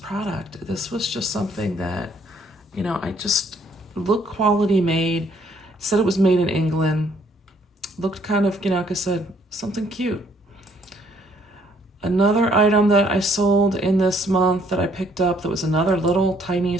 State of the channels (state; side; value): normal; both; correlation 0.65